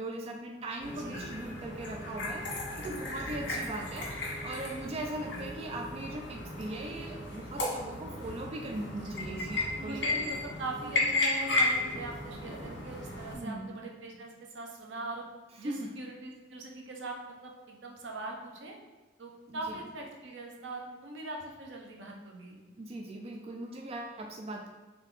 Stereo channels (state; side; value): normal; both; correlation 0.03